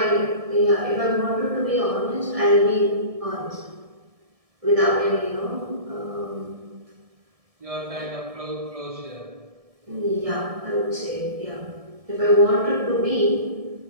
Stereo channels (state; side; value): late; left; 1.7 ms